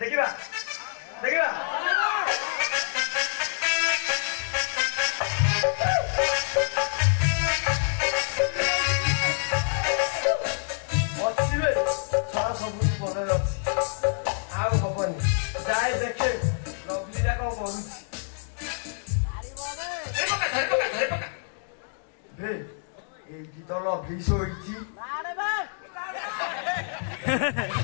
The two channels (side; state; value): right; silent; digital silence